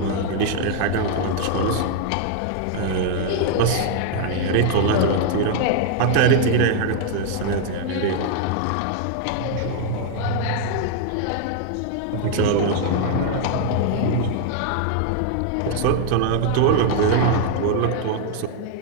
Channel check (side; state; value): both; different; correlation 0.00